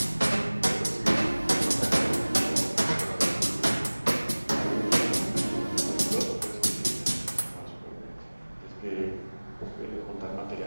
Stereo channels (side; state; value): both; inverted; correlation -1.00